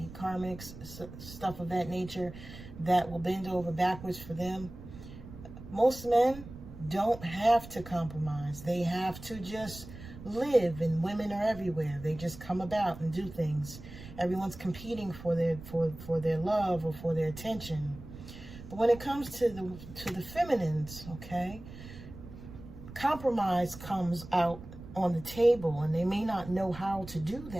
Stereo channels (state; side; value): noise; right; rumble, 14 dB below the sound